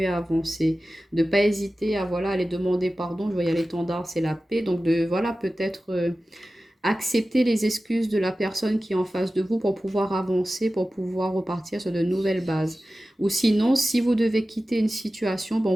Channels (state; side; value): normal; both; correlation 0.95